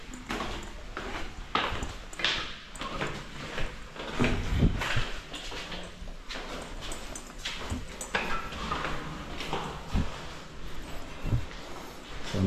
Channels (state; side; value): identical; both; correlation 1.00